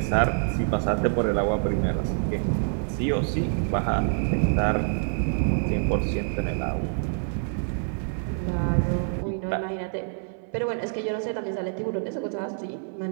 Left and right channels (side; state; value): left; silent; 61 dB below the other